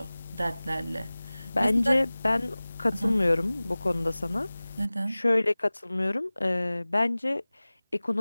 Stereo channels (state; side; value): inverted; both; correlation -0.99